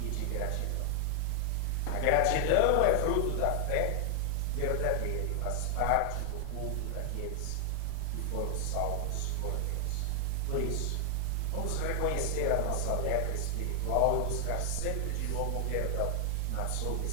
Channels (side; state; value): both; different; correlation 0.00